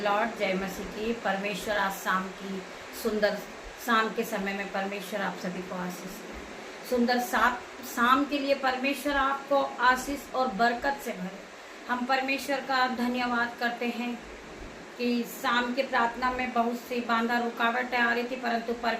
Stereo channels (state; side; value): identical; both; correlation 1.00